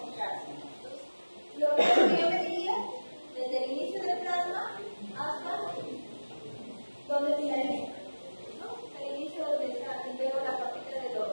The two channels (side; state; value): both; inverted; correlation -1.00